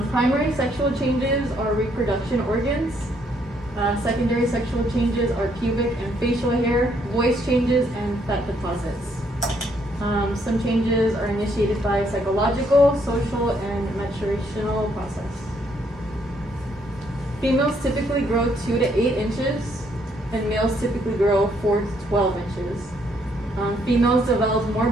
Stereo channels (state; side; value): normal; both; correlation 0.70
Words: Primary sexual changes are reproduction organs. Secondary sexual changes are pubic and facial hair, voice changes, and fat deposits. Some changes are initiated by psychological, social, and maturational process. Females typically grow 2 to 8 inches, and males typically grow 4 to 12 inches. Females develop more